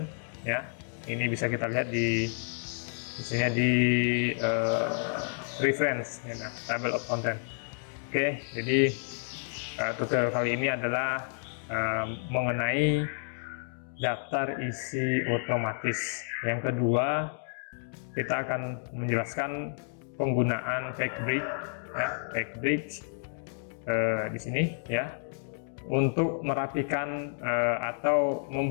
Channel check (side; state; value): right; silent; digital silence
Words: Ya, ini bisa kita lihat di misalnya di reference, ya, Table of Content. Oke, jadi tutorial kali ini adalah mengenai daftar isi otomatis. Yang kedua, kita akan menjelaskan penggunaan Factbrick, ya, Factbrick di sini, ya, untuk merapikan atau